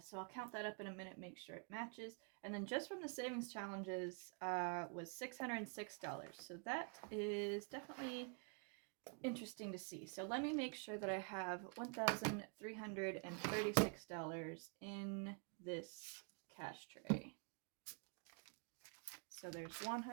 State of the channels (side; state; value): left; quieter; 37.6 dB